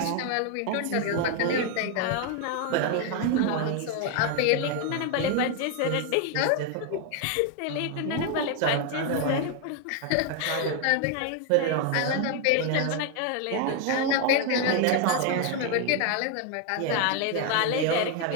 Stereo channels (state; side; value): different; both; correlation 0.01